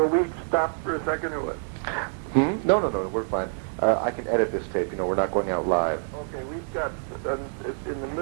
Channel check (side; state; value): left; silent; digital silence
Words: we stop for a second or what? No, we're fine. I can edit this tape. We're not going out live. Okay, we've got, in the